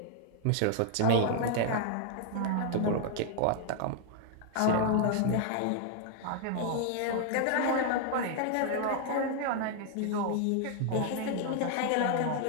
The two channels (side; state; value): both; different; correlation 0.00